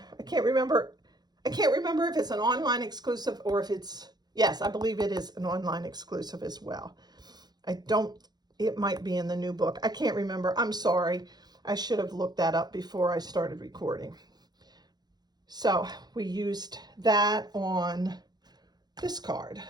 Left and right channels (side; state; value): left; late; 0.20 ms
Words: I can't remember if it's an online exclusive or if it's, yes, I believe it is an online exclusive as well. It might be in the new book. I can't remember. I'm sorry. I should have looked that up before I started recording. So we used that on this card.